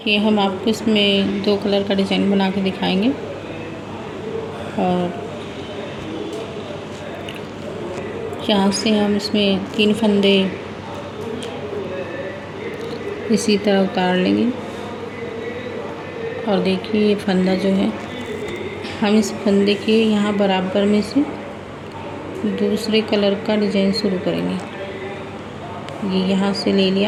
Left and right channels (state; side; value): identical; both; correlation 1.00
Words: ये हम आपको इसमें 2 कलर का डिज़ाइन बना के दिखाएंगे। और यहाँ से हम इसमें 3 फंदे इसी तरह उतार लेंगे। और देखिए ये फंदा जो है, हम इस फंदे के यहाँ बराबर में से दूसरे कलर का डिज़ाइन शुरू करेंगे। ये यहाँ से ले